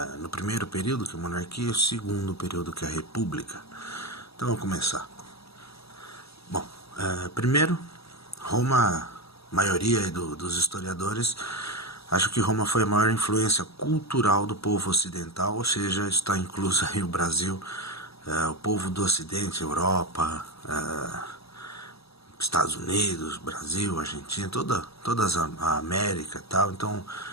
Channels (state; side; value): late; right; 0.77 ms